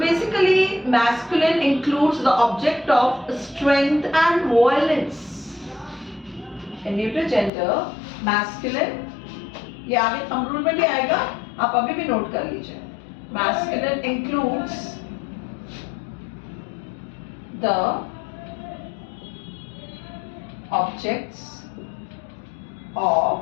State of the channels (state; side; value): drops out; right; at 7.5 s